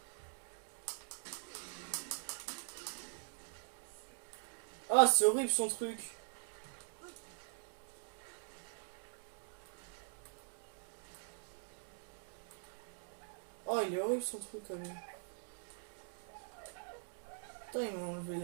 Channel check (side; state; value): left; silent; digital silence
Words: Ah, c'est horrible son truc. Oh, il est horrible son truc quand même. Putain, il m'a enlevé